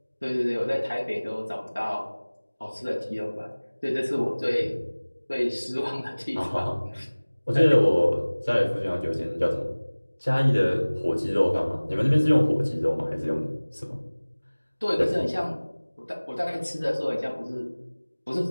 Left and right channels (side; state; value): both; inverted; correlation -1.00